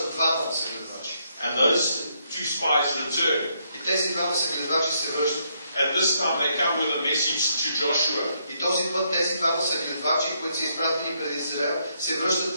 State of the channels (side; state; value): both; inverted; correlation -0.74